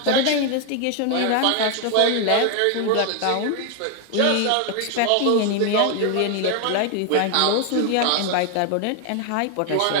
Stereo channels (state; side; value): different; both; correlation 0.01